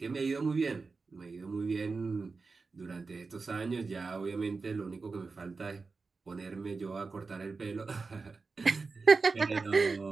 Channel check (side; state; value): left; quieter; 4.3 dB